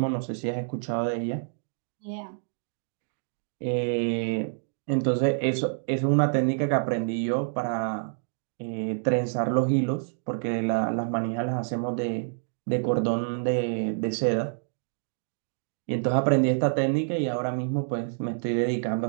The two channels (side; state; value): left; silent; digital silence